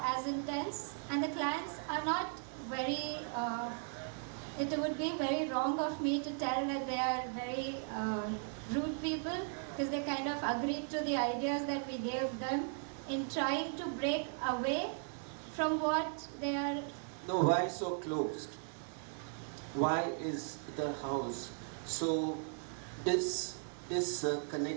as intense, and the clients are not very, it would be very wrong of me to tell that they are very rude people, because they kind of agreed to the ideas that we gave them in trying to break away from what they are. No, why so closed? Why is the house so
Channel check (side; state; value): left; silent; 53 dB below the other